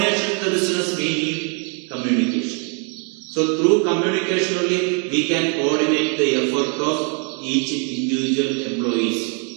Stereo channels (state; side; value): quieter; left; 39.4 dB